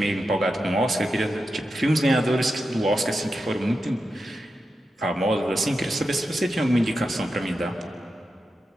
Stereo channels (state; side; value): normal; both; correlation 0.89